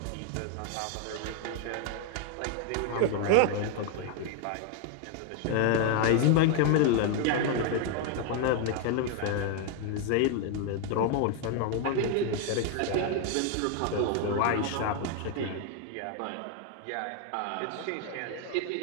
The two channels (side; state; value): both; different; correlation 0.01